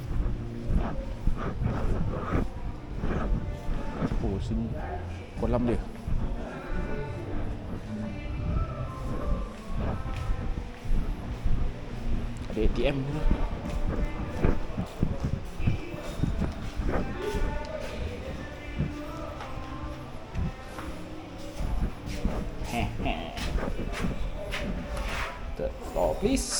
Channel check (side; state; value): both; identical; correlation 1.00